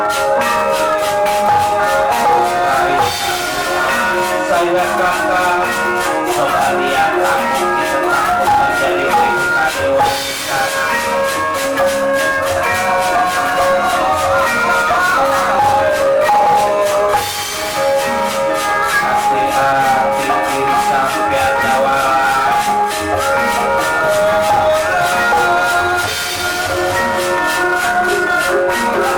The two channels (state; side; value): identical; both; correlation 1.00